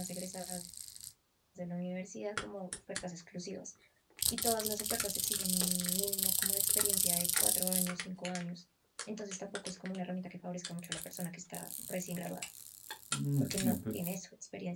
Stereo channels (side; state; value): both; identical; correlation 1.00